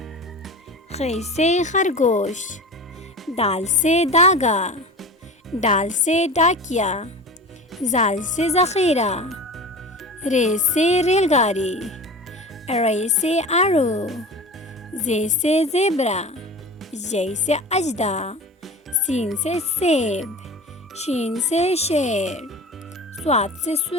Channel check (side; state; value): both; normal; correlation 0.34